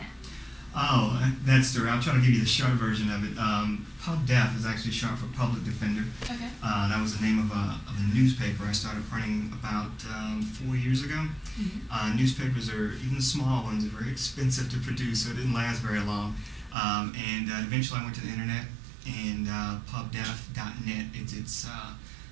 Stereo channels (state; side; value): drops out; left; at 16.8 s